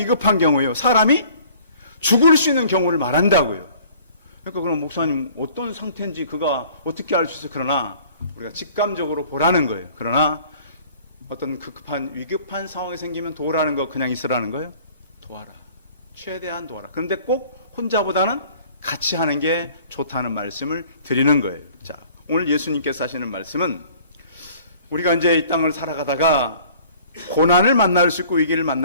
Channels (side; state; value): both; inverted; correlation -0.52